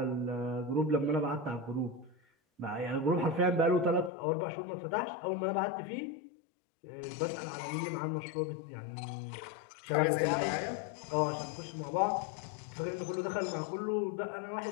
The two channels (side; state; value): right; drops out; at 4.1 s